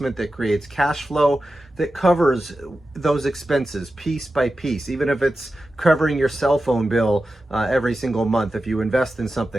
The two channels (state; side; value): normal; both; correlation 0.92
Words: that creates cash flow, that covers those expenses piece by piece. Even if it's covering your cell phone bill every single month, if you invest in